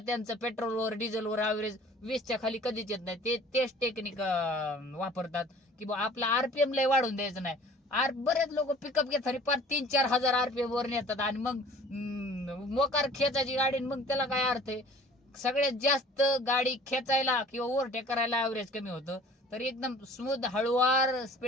पेट्रोलवर डिझेलवर ऍव्हरेज 20च्या खाली कधीच येत नाही. तेच टेक्निक वापरतात की बा आपला RPM लय वाढून द्यायचं नाही. बरेच लोक पिकअप घेतात पार 3-4 हजार RPM वर नेतात आणि मग मोकार खेचायची गाडी, मग त्याला काय अर्थ आहे? सगळ्यात जास्त गाडी खेचायला किंवा ओव्हरटेक करायला ऍव्हरेज कमी होतं. तर एकदम स्मूथ हळूवार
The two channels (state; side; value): normal; both; correlation 0.49